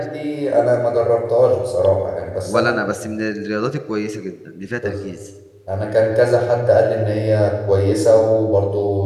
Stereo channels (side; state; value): both; identical; correlation 1.00